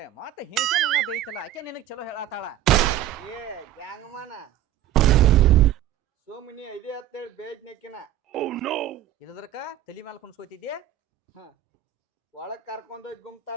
ಮತ್ತೆ ಹೇಂಚೆ ನನ್ನ ಬೇಯ್ತಲ್ಲ ಆಕೆ ನಿನಗ್ ಚಲೋ ಹೇಳತ್ತಾಳ. ಗ್ಯಾಂಗ್ಮನ ಸೋಮಿನಿ ಐದೇ ಹತ್ತೇಳಿ ಬೇಜ್ನೆಕ್ಕಿನ ಇಲ್ಲದ್ರಕ ತಲಿ ಮ್ಯಾಲ ಕುಣ್ಸ್ಕೊತಿದ್ದೆ. ಒಳಗ್ ಕರ್ಕೊಂಡೋಗಿ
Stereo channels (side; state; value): left; quieter; 12.0 dB